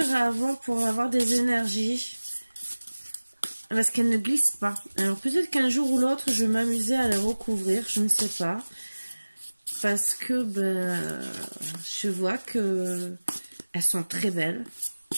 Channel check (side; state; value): both; inverted; correlation -1.00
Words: à avoir pour avoir des énergies. Parce qu'elles ne glissent pas. Alors peut-être qu'un jour ou l'autre, je vais m'amuser à les recouvrir. Je ne sais pas. Parce que ben, je vois que elles sont très belles.